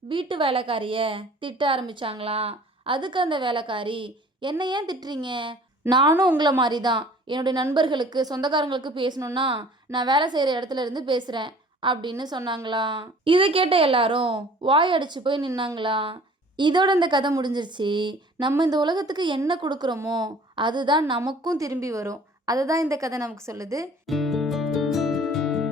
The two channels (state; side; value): normal; both; correlation 0.50